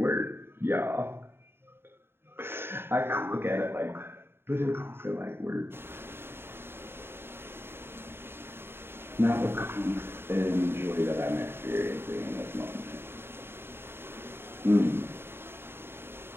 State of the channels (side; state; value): left; late; 0.11 ms